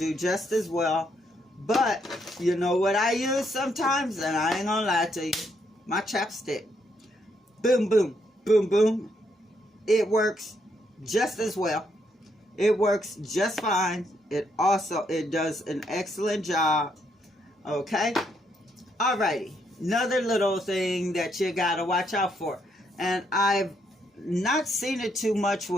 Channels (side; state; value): both; normal; correlation 0.75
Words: just as well. But you know what I use sometimes, and I ain't gonna lie to you. my chapstick. Boom, boom, boom, boom. It works just as well. It works just fine. It does an excellent job. Okay? Alrighty. Another little thing that you gotta watch out for. And I've not seen it too much